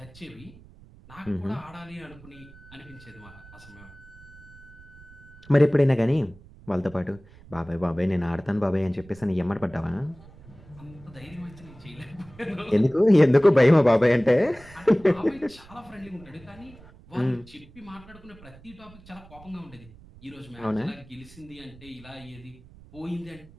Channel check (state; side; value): noise; right; rumble, 22 dB below the sound